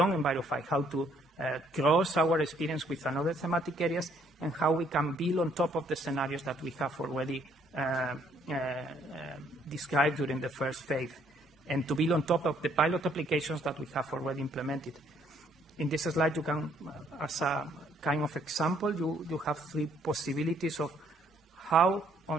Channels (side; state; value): both; normal; correlation 0.66